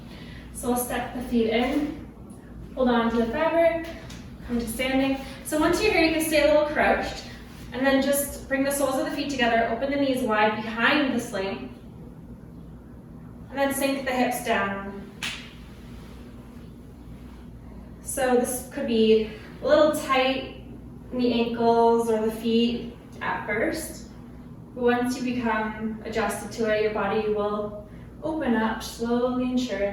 So we'll step the feet in, hold on to the fabric, come to standing. So once you're here, you can stay a little crouched, and then just bring the soles of the feet together, open the knees wide behind the sling, and then sink the hips down. So this could be a little tight in the ankles or the feet at first. But once you become adjusted to it, your body will open up slowly and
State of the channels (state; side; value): identical; both; correlation 1.00